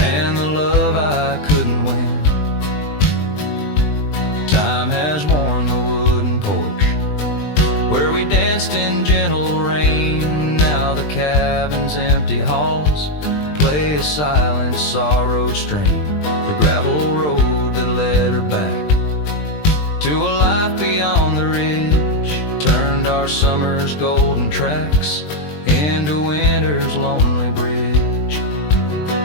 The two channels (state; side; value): late; right; 20 ms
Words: the love I couldn't win. Time has worn the wooden porch, where we danced in gentle rain. Now the cabin's empty halls play a silent sorrowed strain. The gravel road that led her back to a life beyond the ridge turned our summer's golden tracks into winter's lonely bridge.